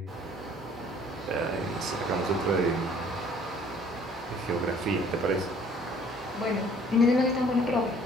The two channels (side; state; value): both; normal; correlation 0.56